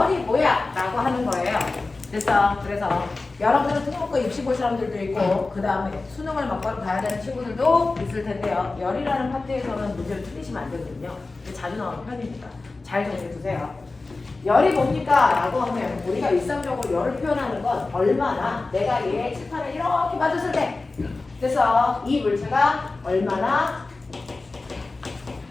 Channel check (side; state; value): right; quieter; 3.5 dB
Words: 뭐야? 라고 하는 거예요. 그래서 여러분은 특목고 입시 볼 사람들도 있고 그 다음에 수능을 막바로 봐야 되는 친구들도 있을 텐데요. 열이라는 파트에서는 문제를 틀리시면 안 되거든요. 자주 나오는 편입니다. 잘 정리해 두세요. 열이 뭡니까? 라고 하면 우리가 일상적으로 열을 표현하는 건 얼마나 내가 얘 칠판을 이렇게 맞았을 때 그래서 이 물체가 얼마나